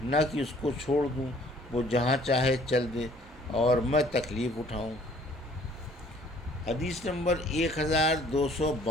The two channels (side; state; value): both; normal; correlation 0.57